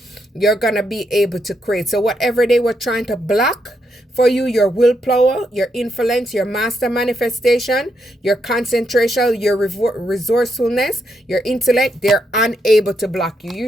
you're going to be able to create. So whatever they were trying to block for you, your willpower, your influence, your master manifestation, your concentration, your resourcefulness, your intellect, they're unable to block you.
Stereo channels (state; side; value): normal; both; correlation 0.79